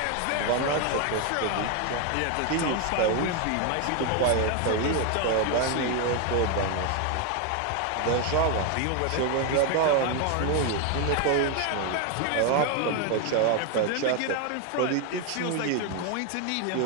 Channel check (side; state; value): both; different; correlation 0.01